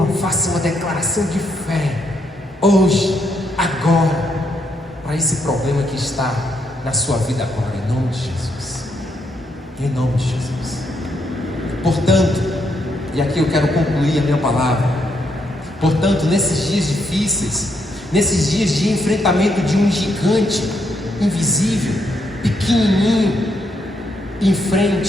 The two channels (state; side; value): normal; both; correlation 0.77